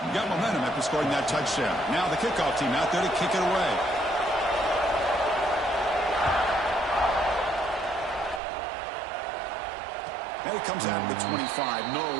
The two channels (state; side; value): drops out; left; at 8.4 s